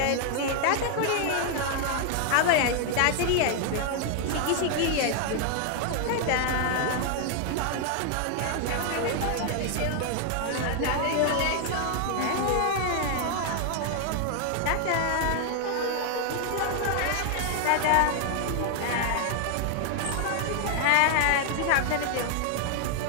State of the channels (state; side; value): different; both; correlation 0.00